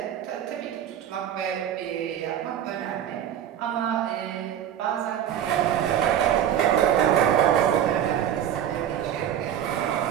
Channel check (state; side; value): quieter; left; 10.2 dB